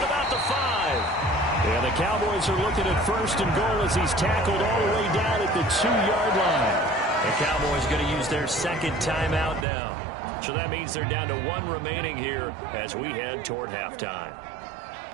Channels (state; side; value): drops out; left; at 9.7 s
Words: about the 5. And the Cowboys are looking at 1st and goal as he's tackled all the way down at the 2-yard line. The Cowboys going to use their 2nd timeout now. So that means they're down to 1 remaining here as we head toward halftime.